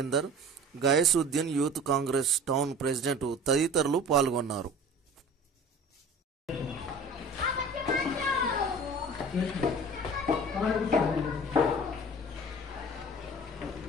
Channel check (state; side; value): normal; both; correlation 0.42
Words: Gayasuddin, youth Congress town president తదితరులు పాల్గొన్నారు.